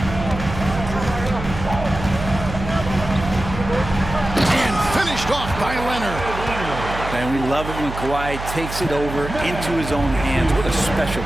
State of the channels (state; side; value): noise; right; hum, 8 dB below the sound